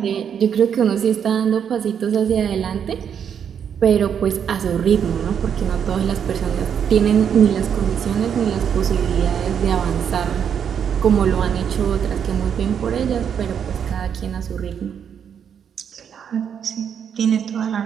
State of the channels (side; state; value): left; quieter; 8.0 dB